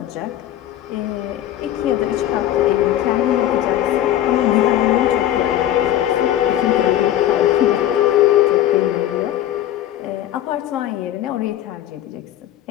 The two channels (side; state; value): right; quieter; 12.4 dB